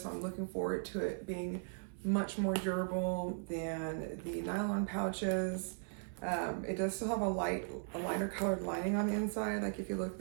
so I'm looking forward to it being much more durable than the nylon pouches. It does still have a lighter colored lining on the inside, like if you look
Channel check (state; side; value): silent; left; 53 dB below the other